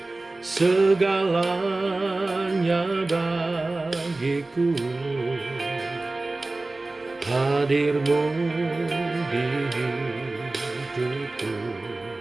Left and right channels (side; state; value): left; quieter; 3.1 dB